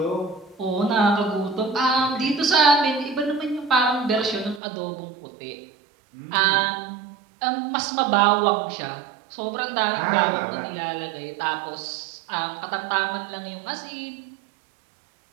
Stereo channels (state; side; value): drops out; left; at 4.6 s